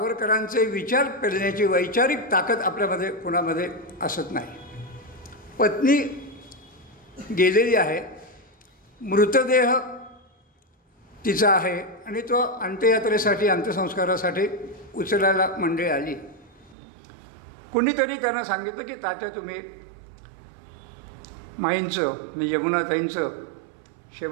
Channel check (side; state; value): left; drops out; at 16.8 s